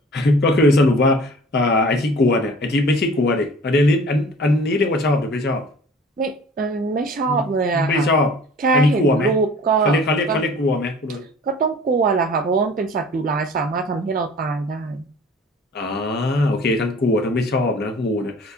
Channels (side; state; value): both; normal; correlation 0.47